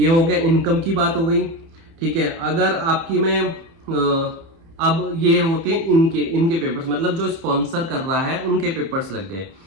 हो गया, इनकम की बात हो गई, ठीक है। अगर आपकी में अब ये होते हैं इनके पेपर्स, मतलब जो स्पॉन्सर कर रहा है उनके पेपर्स लग गए,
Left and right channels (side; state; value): left; late; 30 ms